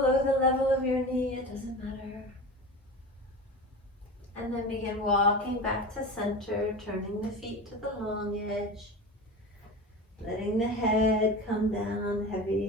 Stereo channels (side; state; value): both; normal; correlation 0.30